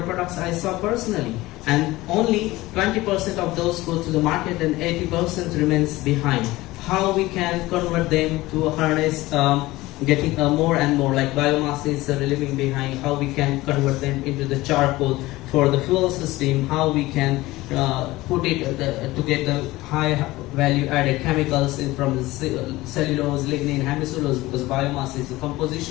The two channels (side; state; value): right; quieter; 18.8 dB